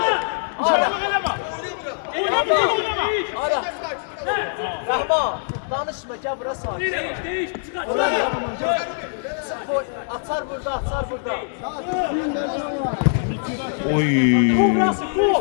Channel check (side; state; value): right; silent; digital silence